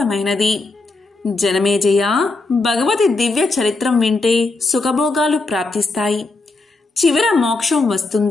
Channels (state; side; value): quieter; right; 3.4 dB